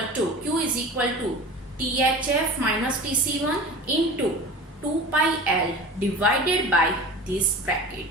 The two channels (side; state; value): both; normal; correlation 0.36